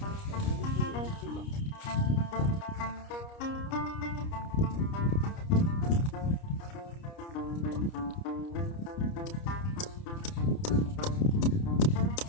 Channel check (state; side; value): late; right; 29 ms